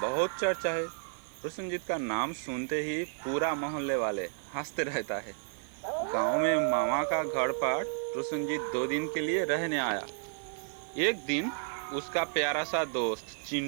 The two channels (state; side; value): silent; left; 55 dB below the other